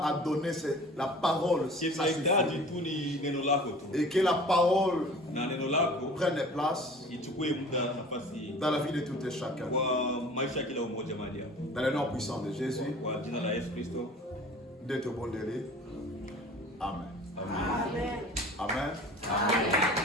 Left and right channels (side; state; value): both; normal; correlation 0.44